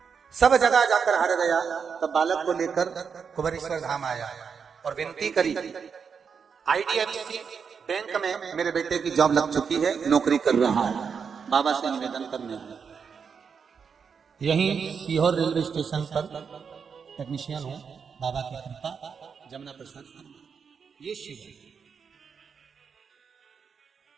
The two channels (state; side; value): quieter; left; 6.3 dB